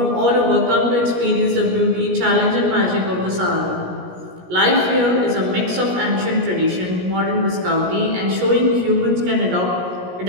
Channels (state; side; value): late; left; 17 ms